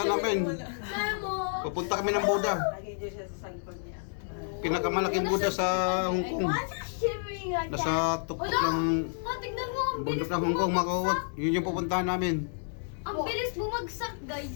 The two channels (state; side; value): silent; right; 58 dB below the other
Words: namin. Memo. Papunta kami ng Buda. Lagay dyan siya sa likod niya. Pinakamalaking Buda sa Hong Kong. Why is it shivering like that? Nasa tuktok ng Tignan mo, ang bundok ng Hong Kong, mga kawawat. Yun yung pupuntahan namin. Ang bilis bumagsak,